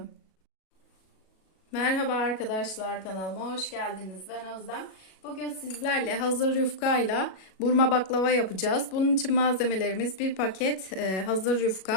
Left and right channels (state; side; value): late; right; 37 ms